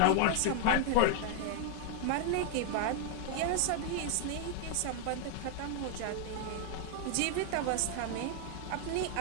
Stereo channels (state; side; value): different; both; correlation 0.00